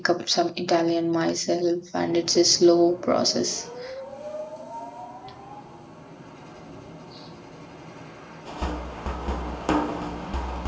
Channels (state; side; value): identical; both; correlation 1.00